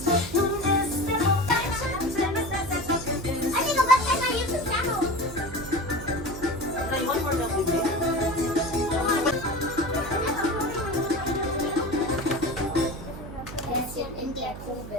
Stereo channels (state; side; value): noise; right; hum, 11 dB below the sound